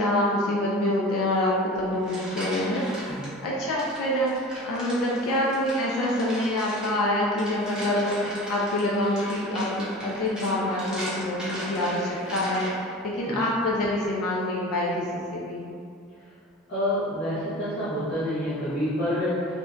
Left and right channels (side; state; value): both; normal; correlation 0.36